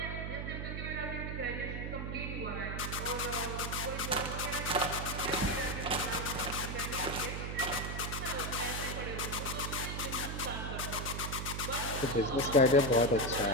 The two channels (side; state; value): right; noise; hum, 4 dB below the sound